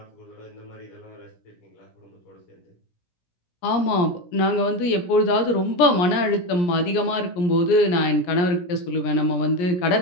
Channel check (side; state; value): right; late; 17 ms